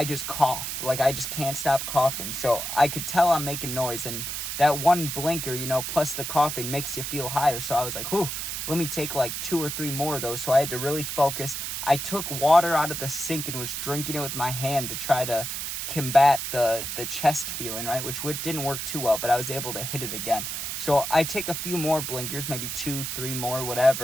just cough. Like I just can't stop coughing. So I could tell I'm making noise, and that one blinker, you know, plus the coughing makes you feel higher. So I was like, whew, let me take like 2 or 3 more of those. So I had to really focus. I took water out of the sink and was drinking it with my hand to try to combat the chest feeling, right? Which didn't work too well, but I was able to hit it again. So I take a few more blinkers, maybe 2, 3 more,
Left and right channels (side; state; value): right; noise; hiss, 4 dB below the sound